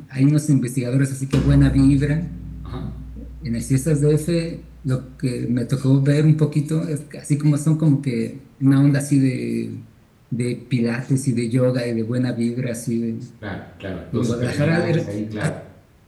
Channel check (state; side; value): identical; both; correlation 1.00